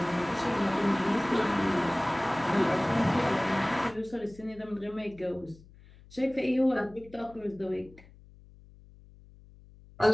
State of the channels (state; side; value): noise; left; hum, 23 dB below the sound